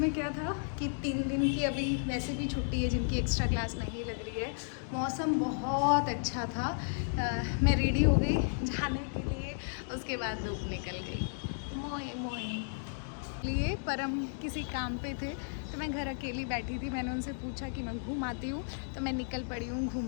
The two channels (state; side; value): silent; right; digital silence